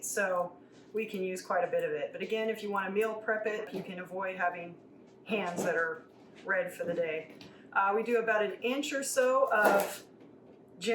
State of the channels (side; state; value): both; identical; correlation 1.00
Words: so we can use quite a bit of it. But again, if you want to meal prep it, you can avoid having hands that are red for the day. We do about 1 inch or so of